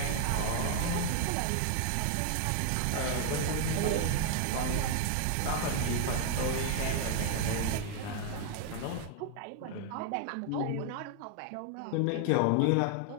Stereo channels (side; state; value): both; different; correlation 0.00